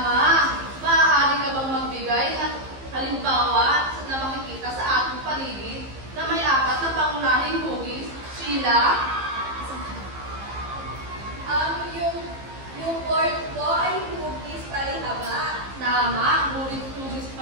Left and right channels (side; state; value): left; late; 15 ms